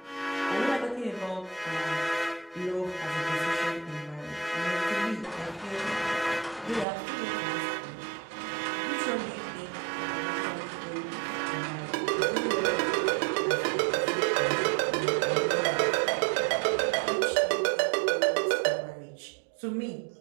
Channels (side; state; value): left; drops out; at 6.9 s